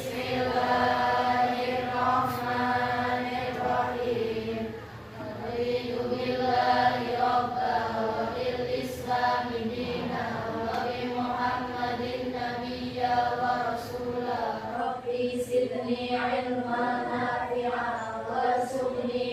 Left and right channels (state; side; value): identical; both; correlation 1.00